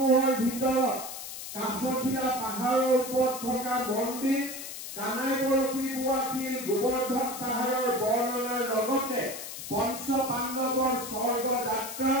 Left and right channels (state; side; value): noise; left; hiss, 9 dB below the sound